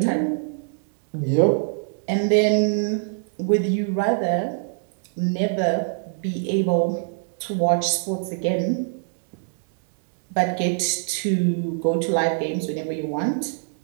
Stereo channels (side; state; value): left; silent; digital silence